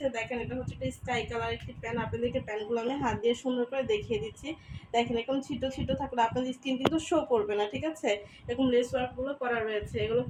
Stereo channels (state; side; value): identical; both; correlation 1.00